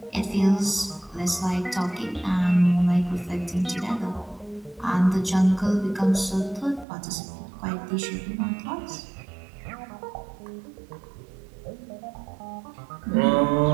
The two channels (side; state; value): left; drops out; at 6.9 s